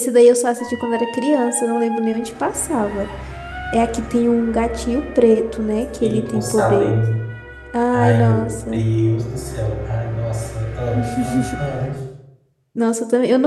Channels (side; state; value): both; identical; correlation 1.00